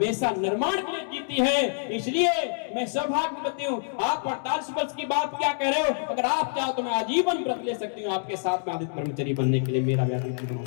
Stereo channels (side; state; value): right; silent; digital silence